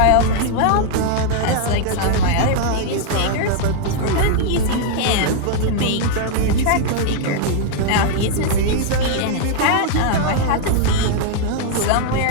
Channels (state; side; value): different; both; correlation -0.01